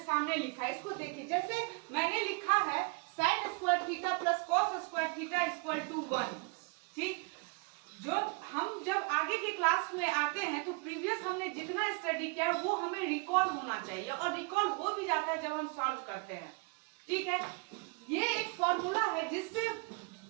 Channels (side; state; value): left; quieter; 30.5 dB